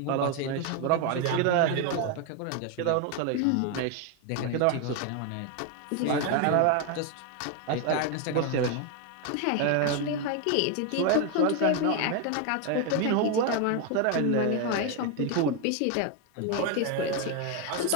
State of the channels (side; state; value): both; different; correlation 0.01